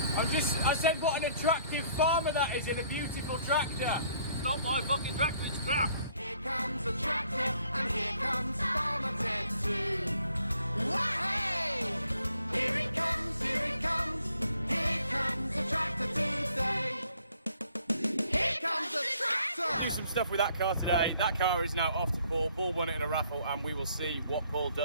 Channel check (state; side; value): inverted; both; correlation -0.63